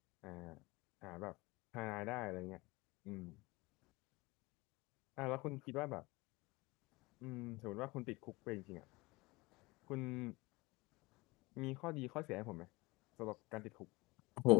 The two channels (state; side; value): quieter; right; 22.9 dB